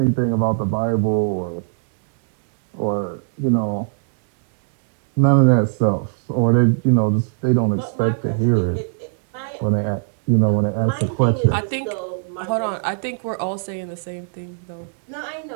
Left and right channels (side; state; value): left; silent; 66 dB below the other